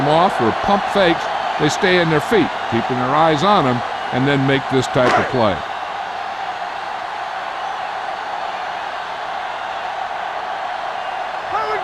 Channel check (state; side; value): identical; both; correlation 1.00